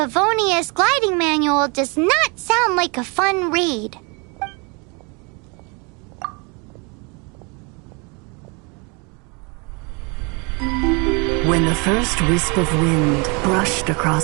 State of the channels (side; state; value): left; quieter; 31.5 dB